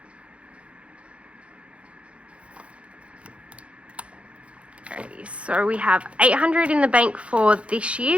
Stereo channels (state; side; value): late; left; 0.061 ms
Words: So we have 800 in the bank for this